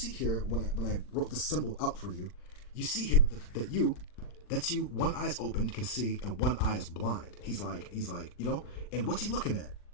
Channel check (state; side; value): late; right; 40 ms